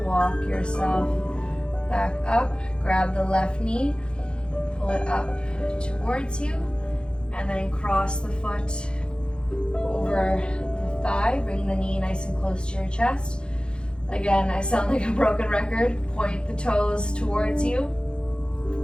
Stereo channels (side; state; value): right; late; 0.052 ms